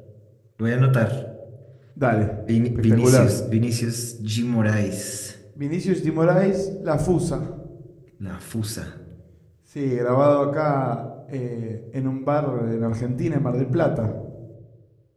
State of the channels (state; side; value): identical; both; correlation 1.00